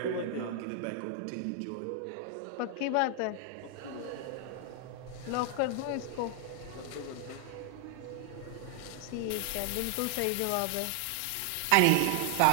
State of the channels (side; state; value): both; different; correlation 0.00